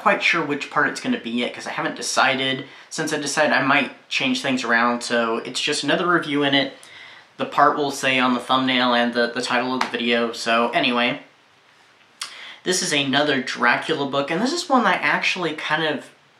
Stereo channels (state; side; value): identical; both; correlation 1.00